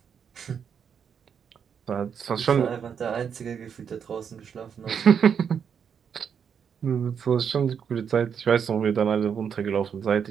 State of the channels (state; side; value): quieter; left; 7.3 dB